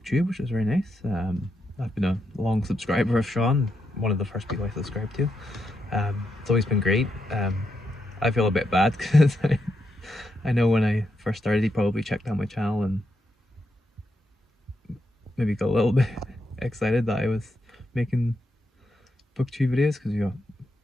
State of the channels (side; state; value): both; normal; correlation 0.83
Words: which was very nice. I've been a long subscriber of Sean, one of the first people I subscribed to. It's always been great. I feel a bit bad because I know when I first started he probably checked out my channel and maybe got a little bit excited that I was making BookTube videos, because